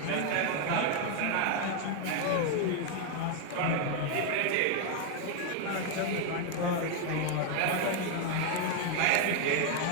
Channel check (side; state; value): both; different; correlation 0.01